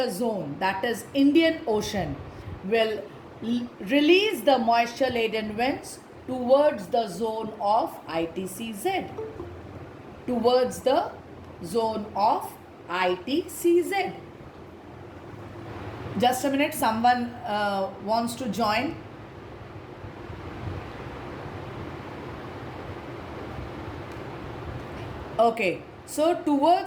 zone, that is Indian Ocean, will release the moisture laden winds towards the zone of ITCZ, towards the zone of ITCZ. Just a minute, someone wants to join. Okay, so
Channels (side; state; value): both; identical; correlation 1.00